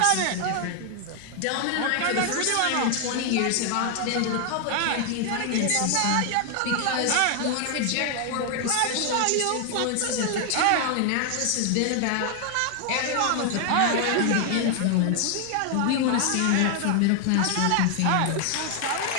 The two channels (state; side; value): different; both; correlation 0.00